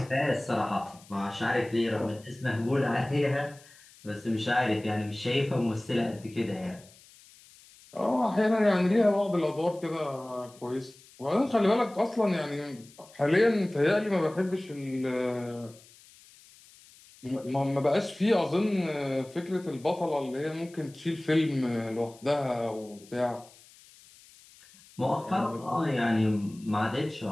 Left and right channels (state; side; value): noise; left; hiss, 24 dB below the sound